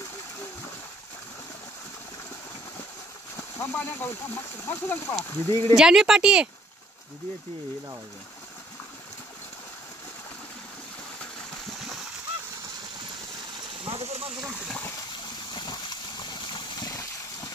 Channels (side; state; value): both; normal; correlation 0.63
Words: थांब पाणी अंगावर थांब मग सुद्धा पळा. दीदी इकडे जानवी पाठी आहे. दीदी येते हे लावायचं. माझं तर माणसं जमतं.